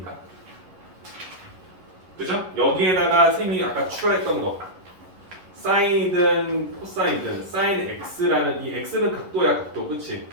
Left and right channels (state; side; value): late; left; 11 ms